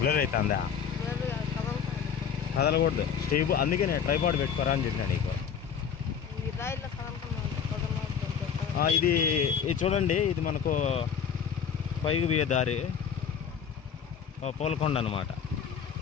అవుతుందా? కదలకూడదు స్టేబ్, అందుకే నేను ట్రైపాడ్ పెట్టుకోరా అని చెప్పినా నీకు. ఇది చూడండి, ఇది మనకు పైకి పోయే దారి పోలకొండ అన్నమాట.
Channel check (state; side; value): quieter; right; 7.4 dB